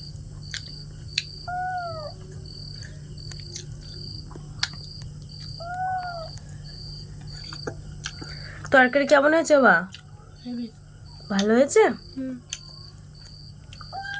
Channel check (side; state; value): both; identical; correlation 1.00